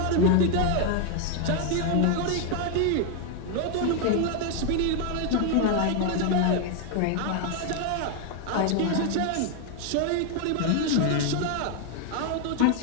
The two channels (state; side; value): different; both; correlation 0.00